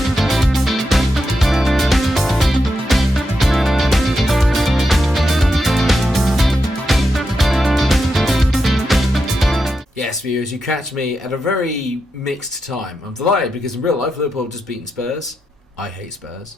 Yes, viewers, you catch me at a very mixed time. I'm delighted because in real life Liverpool have just beaten Spurs. I hate Spurs.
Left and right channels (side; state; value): both; normal; correlation 0.86